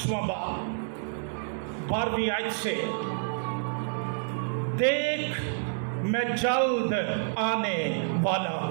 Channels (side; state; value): left; silent; 59 dB below the other